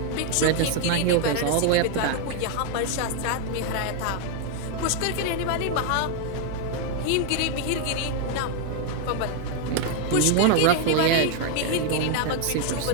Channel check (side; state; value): both; different; correlation 0.01